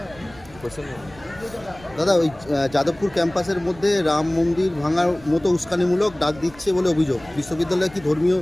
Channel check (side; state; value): right; noise; rumble, 22 dB below the sound